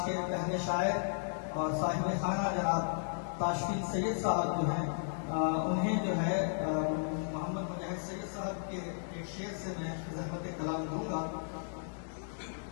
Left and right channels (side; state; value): right; silent; digital silence